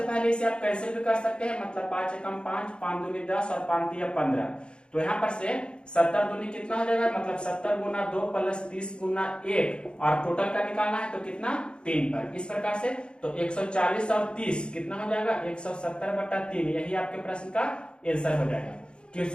पहले इसे आप कैंसिल भी कर सकते हैं, मतलब 5 एकम 5, 5 दूनी 10 और 5 तिया 15। तो यहाँ पर से 70 दूनी कितना हो जाएगा, मतलब 70 गुना 2 प्लस 30 गुना 1, और टोटल का निकालना है तो कितना 3 पर। इस प्रकार से तो 140 और 30 कितना हो जाएगा, 170/3। यही आपके प्रश्न का आंसर हो जाएगा।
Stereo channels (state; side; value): late; right; 0.053 ms